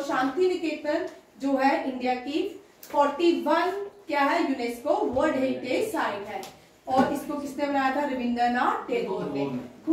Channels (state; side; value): identical; both; correlation 1.00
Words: शांति निकेतन जो है इंडिया की 41 क्या है यूनेस्को वर्ल्ड हेरिटेज साइट है, और इसको किसने बनाया था? रविंद्रनाथ टैगोर ने।